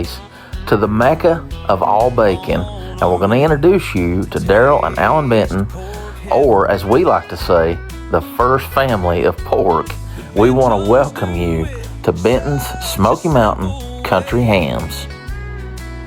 to the Mecca of all bacon. And we're going to introduce you to Daryl and Alan Benton, or as we like to say, the first family of pork. We want to welcome you to Benton's Smoky Mountain Country Hams.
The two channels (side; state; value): both; identical; correlation 1.00